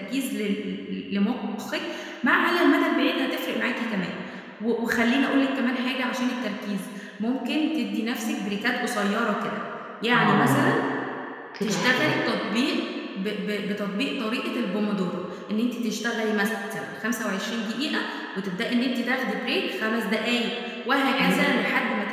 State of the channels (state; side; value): identical; both; correlation 1.00